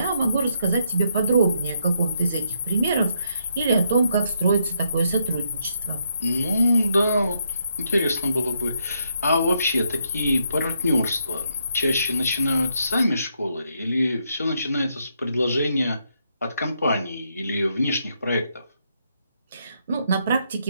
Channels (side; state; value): both; inverted; correlation -0.76